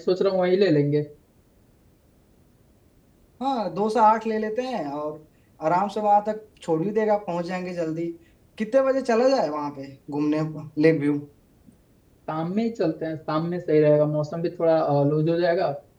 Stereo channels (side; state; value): both; identical; correlation 1.00